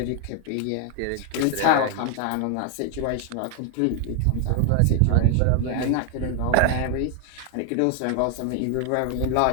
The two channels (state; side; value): different; both; correlation 0.00